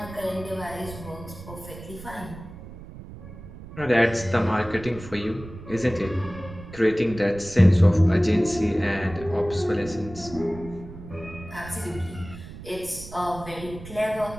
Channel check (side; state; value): right; noise; rumble, 14 dB below the sound